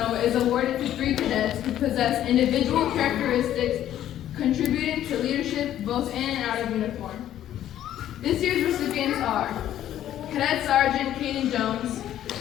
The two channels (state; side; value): quieter; right; 11.8 dB